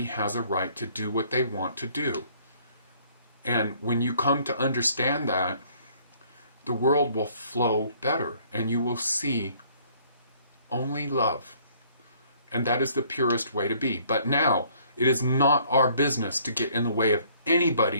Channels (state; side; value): inverted; both; correlation -0.60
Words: has a right to do what they want to do. And when you come to understand that, the world will flow better and you will see only love. And that is the purest way to be. But now, it is not our business to get in the way of